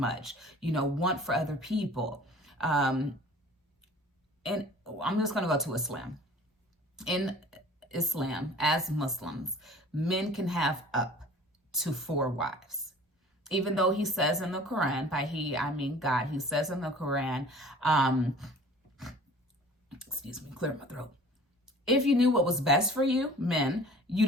Want for other people. And I'm just going to go to Islam. In Islam, as Muslims, men can have up to 4 wives. Even though he says in the Quran, by he, I mean God, he says in the Quran, clear my throat. If you knew what was best for you, men,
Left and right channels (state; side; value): normal; both; correlation 0.47